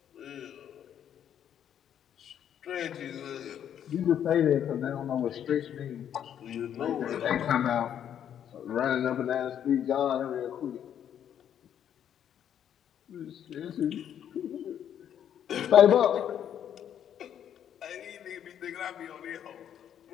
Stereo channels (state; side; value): quieter; right; 9.6 dB